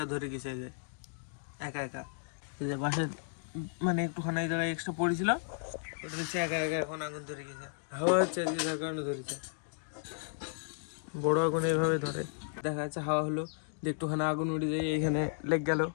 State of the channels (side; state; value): right; silent; digital silence